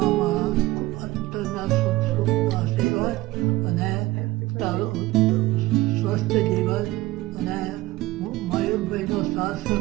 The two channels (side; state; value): left; quieter; 18.6 dB